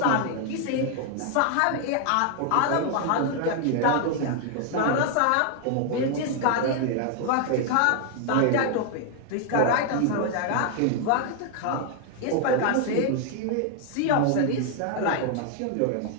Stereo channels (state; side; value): different; both; correlation 0.00